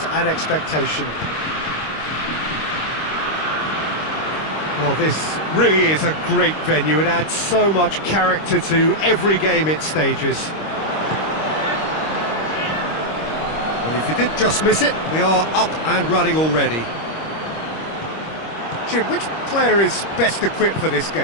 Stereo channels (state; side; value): late; right; 26 ms